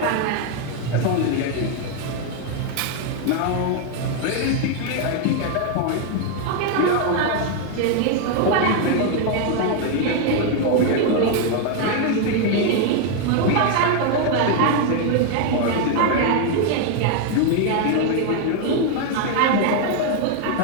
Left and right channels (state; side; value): different; both; correlation 0.01